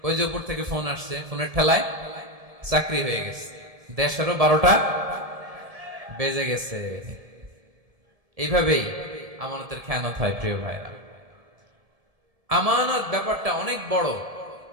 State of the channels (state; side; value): late; left; 1.7 ms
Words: ওই যে উপর থেকে ফোন আসছে, ফোনের ঠেলায় চাকরি হয়ে গেছে। দেশেরও 12টা বেজে গেছে। এইভাবেই আমানতের খেয়ানত হয়। প্রিয় ভাইরা, আমানত ব্যাপারটা অনেক বড়।